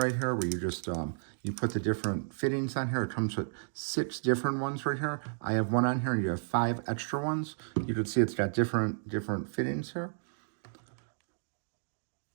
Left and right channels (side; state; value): left; silent; digital silence